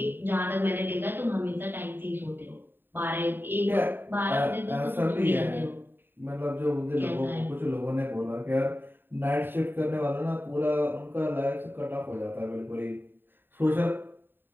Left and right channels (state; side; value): late; left; 0.096 ms